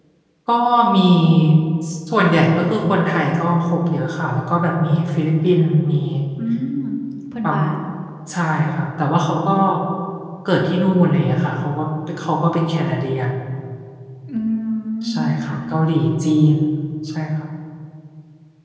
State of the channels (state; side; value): identical; both; correlation 1.00